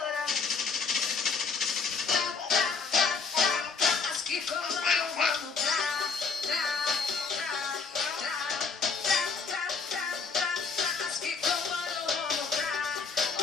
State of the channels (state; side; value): quieter; right; 5.0 dB